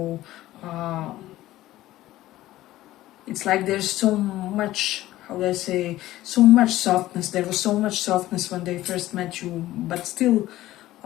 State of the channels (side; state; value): right; quieter; 15.6 dB